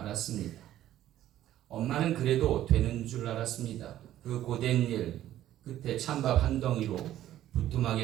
엄마는 그래도 되는 줄 알았습니다. 그 고된 일 끝에 찬밥 한 덩이로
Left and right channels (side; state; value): left; quieter; 12.8 dB